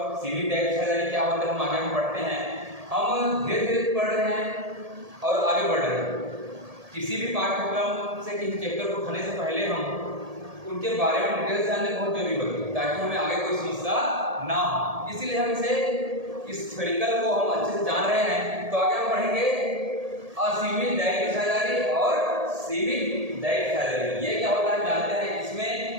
सीमित दायित्व साझेदारी क्या होता है हम आगे में पढ़ते हैं। हम धीरे धीरे पढ़ रहे हैं और आगे बढ़ रहे हैं। किसी भी पाठ्यक्रम से किसी चैप्टर को पढ़ने से पहले हम उनके बारे में डिटेल जानने बहुत जरूरी होती है, ताकि हमें आगे कोई समस्या ना हो। इसीलिए हम इस थ्योरिकल को हम अच्छे से जान रहे हैं। तो आगे हम पढ़ेंगे असीमित दायित्व साझेदारी और सीमित दायित्व साझेदारी। ये क्या होता है जानते हैं। इसमें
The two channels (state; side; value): late; left; 1.8 ms